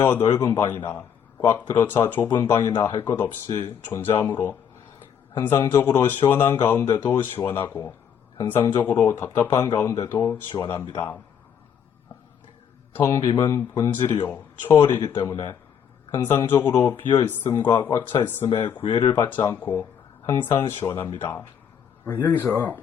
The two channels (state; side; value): quieter; right; 8.1 dB